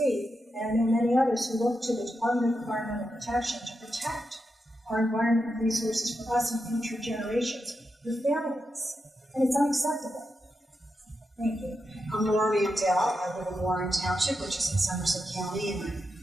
and I know many others who look to the Department of Environmental Protection to protect our environment and resources for us and future generations, your families, and it's unacceptable. Thank you. I'm Laura Mandel. I live in Warren Township, which is in Somerset County, and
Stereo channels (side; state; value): both; normal; correlation 0.87